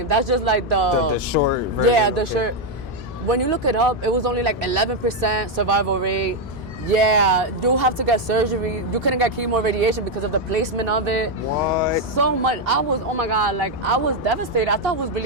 That's just like The short version. yeah, the okay. short. When you look it up, it was only like 11% survival rate. Yeah, you have to get surgery. You couldn't get chemo or radiation because of the placement of it. What? So much. I was, oh my God, like, I was devastated. I thought I was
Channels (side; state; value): both; normal; correlation 0.03